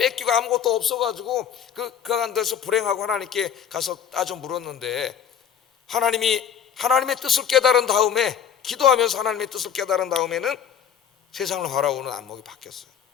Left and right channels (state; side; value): quieter; right; 8.4 dB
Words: 아무것도 없어가지고 그 데서 불행하고 하나님께 가서 따져 물었는데, 하나님의 뜻을 깨달은 다음에, 기도하면서 하나님의 뜻을 깨달은 다음에는 세상을 바라보는 안목이 바뀌었어요.